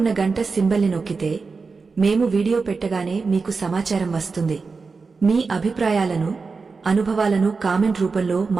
గంట సింబల్ని నొక్కితే మేము వీడియో పెట్టగానే మీకు సమాచారం వస్తుంది. మీ అభిప్రాయాలను, అనుభవాలను కామెంట్ రూపంలో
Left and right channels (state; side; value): quieter; left; 4.5 dB